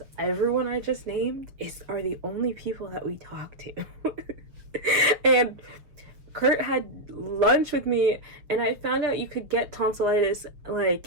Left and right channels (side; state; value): left; late; 6.7 ms